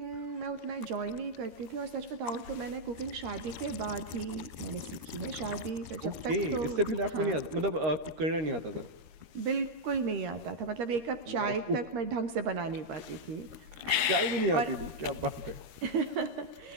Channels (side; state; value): left; late; 13 ms